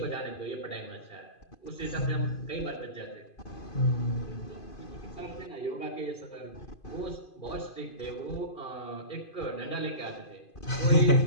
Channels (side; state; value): right; late; 2.5 ms